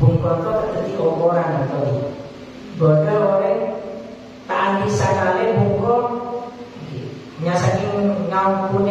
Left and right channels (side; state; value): both; identical; correlation 1.00